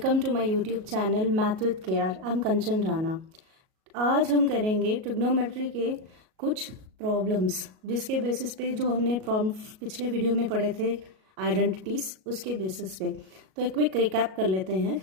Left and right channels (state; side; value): late; left; 37 ms